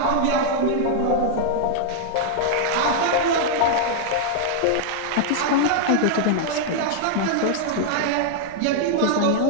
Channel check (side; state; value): both; different; correlation -0.01